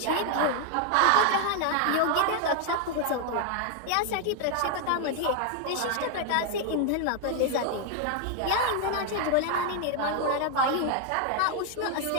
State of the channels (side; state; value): both; different; correlation 0.00